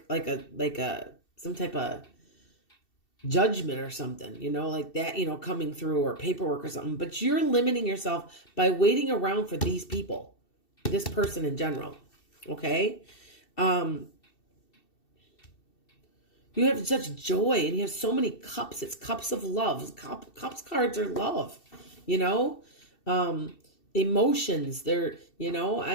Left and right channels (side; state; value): right; late; 2.7 ms